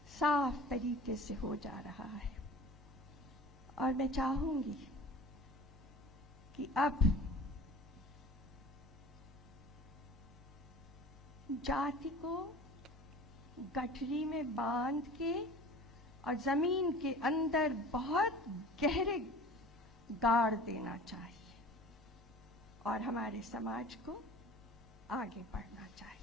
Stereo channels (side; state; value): both; normal; correlation 0.42